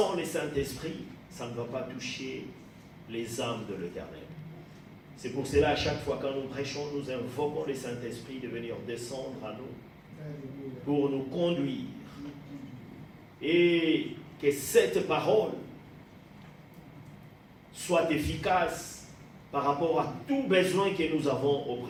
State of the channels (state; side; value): identical; both; correlation 1.00